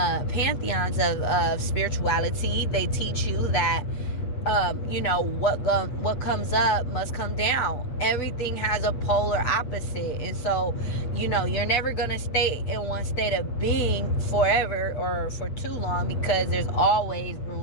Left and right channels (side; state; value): right; late; 8.5 ms